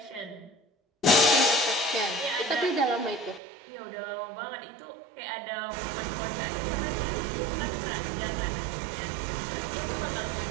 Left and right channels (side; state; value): left; drops out; at 3.4 s